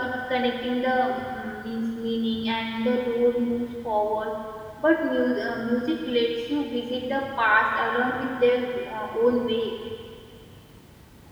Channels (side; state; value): both; identical; correlation 1.00